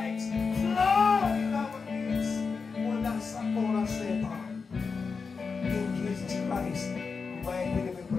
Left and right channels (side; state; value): right; quieter; 5.0 dB